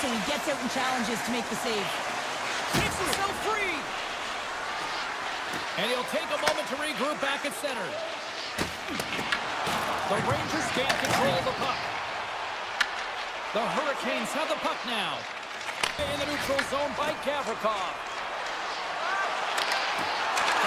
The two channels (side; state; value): both; identical; correlation 1.00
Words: so he gets out and challenges to make the save. Takes himself free. And he'll take a moment to regroup back at center. The Rangers gain control of the puck. The Hurricanes have the puck now. In the neutral zone by Gavrikov.